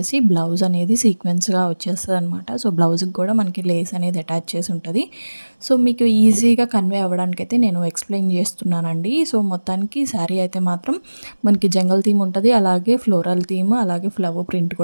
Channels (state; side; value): inverted; both; correlation -1.00